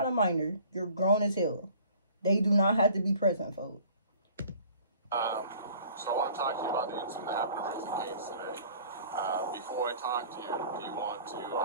a minor. You're grown as hell. They do not have to be present, folks. So I want to talk to you about the incident that happened at Raising Cane's today. Before I talk to you, do you want to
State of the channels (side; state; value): both; inverted; correlation -0.50